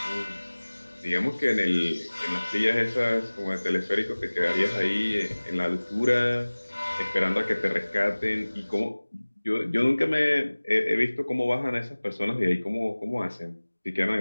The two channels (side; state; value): both; inverted; correlation -1.00